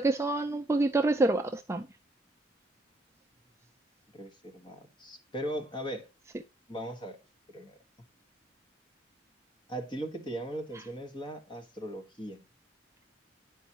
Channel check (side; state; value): both; normal; correlation 0.71